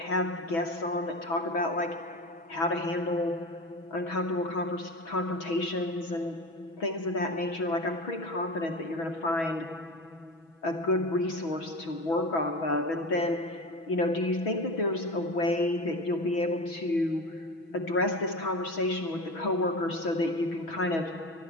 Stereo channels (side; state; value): right; late; 6.1 ms